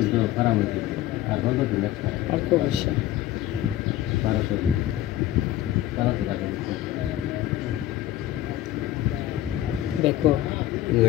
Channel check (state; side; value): quieter; right; 13.7 dB